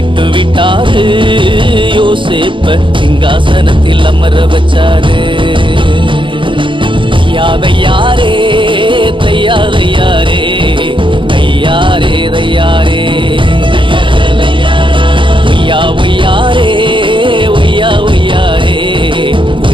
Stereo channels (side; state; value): left; late; 0.24 ms